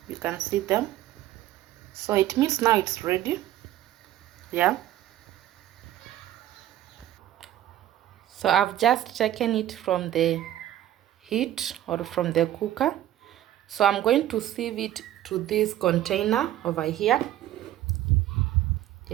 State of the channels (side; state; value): left; quieter; 13.1 dB